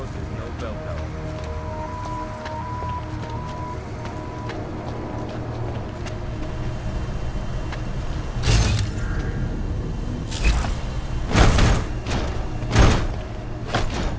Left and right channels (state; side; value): identical; both; correlation 1.00